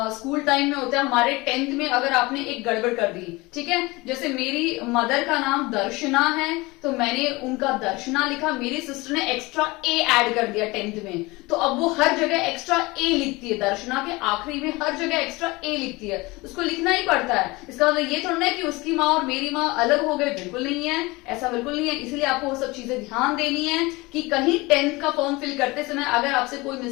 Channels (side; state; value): right; quieter; 22.9 dB